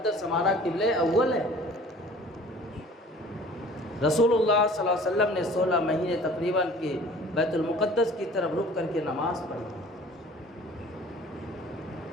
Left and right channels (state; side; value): normal; both; correlation 0.48